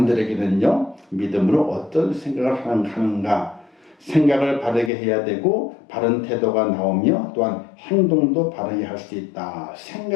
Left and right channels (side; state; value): right; drops out; at 4.9 s